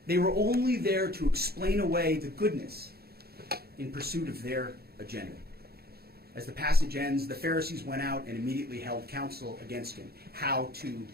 They were only there to explain away the goodness in pursuit of their agenda. As the passage ends, the Pharisees went out and immediately held counsel against him, how to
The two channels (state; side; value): late; left; 0.46 ms